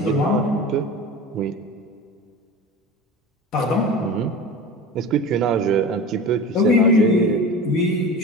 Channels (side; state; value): both; normal; correlation 0.33